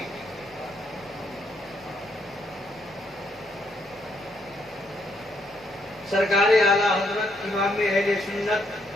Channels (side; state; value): both; normal; correlation 0.74